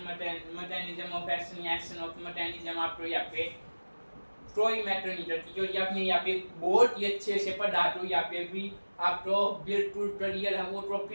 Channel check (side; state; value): both; inverted; correlation -1.00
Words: मैकेनिज्म ऑफ एक्शन या एक्शन ऑफ मैकेनिज्म आपको यहाँ पे ट्रोई मैटरनीटर की जो आपने यहाँ पे बहुत ही अच्छे से पढ़ा, तो यहाँ पे भी आपको बिल्कुल क्लियर है, वो